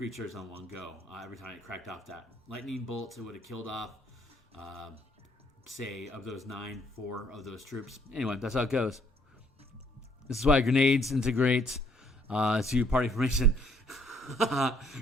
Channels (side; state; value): both; normal; correlation 0.65